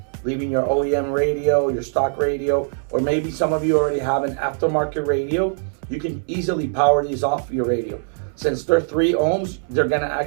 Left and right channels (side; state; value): left; silent; 65 dB below the other